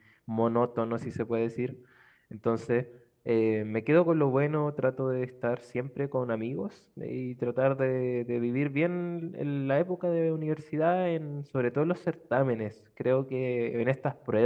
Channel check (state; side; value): identical; both; correlation 1.00